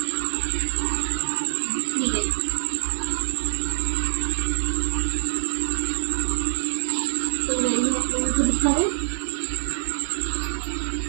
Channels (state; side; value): silent; left; digital silence